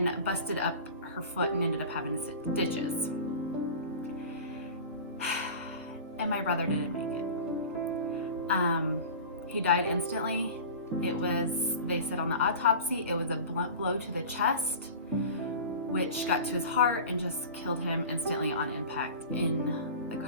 busted up her foot and ended up having stitches. And my brother didn't make it. He died instantly. They said on the autopsy, it was a blunt blow to the chest, which got to his heart and just killed him instantly on impact in the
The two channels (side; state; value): both; inverted; correlation -0.35